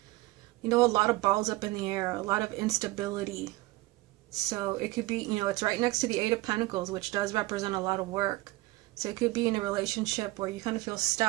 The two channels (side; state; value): left; quieter; 19.9 dB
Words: a lot of balls up in the air, a lot of instability. So it could be, it's right next to the Eight of Pentacles, which does represent a lot of work. So it could be in a relationship where you kind of feel